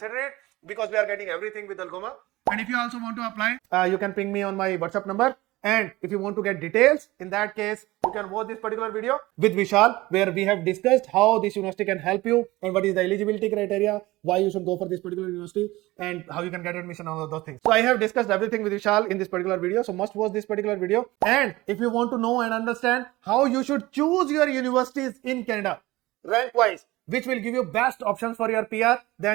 it, because we are getting everything with ALGOMA. And if you also want to apply, you can ping me on my WhatsApp number. And if you want to get details, in that case, you can watch this particular video with Vishal, where we have discussed how this university can help you and what is the eligibility criteria, why you should go for this particular university, and how you can get admission, all of those things. So I have discussed everything with Vishal in this particular video. So must watch this particular video. And if you want to know and understand how you should choose your universities in Canada, rank wise, which will give you best options for your PR,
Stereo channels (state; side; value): quieter; left; 19.4 dB